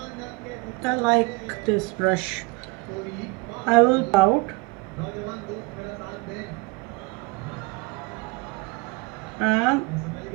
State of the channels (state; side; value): quieter; left; 26.4 dB